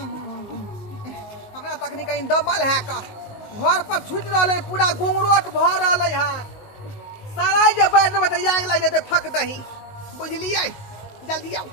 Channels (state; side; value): late; right; 19 ms